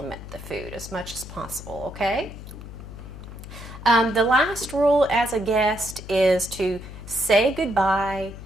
the food as much as possible, okay? The last rule as a guest is to say goodbye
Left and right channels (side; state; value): left; noise; hum, 13 dB below the sound